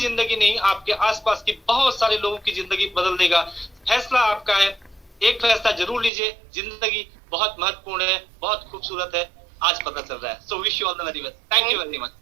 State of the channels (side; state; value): left; drops out; at 6.1 s